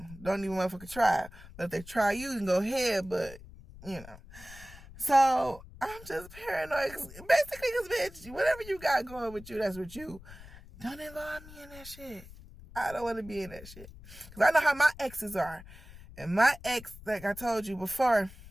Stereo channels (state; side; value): noise; left; rumble, 18 dB below the sound